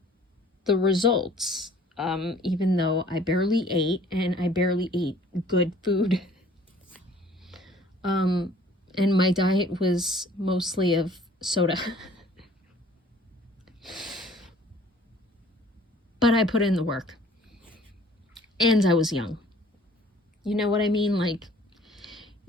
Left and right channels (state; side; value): normal; both; correlation 0.53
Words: the results. Even though I barely ate, and I barely ate good food. And my diet was mostly of soda. But I put in the work. And I was young. You know what I mean? Like,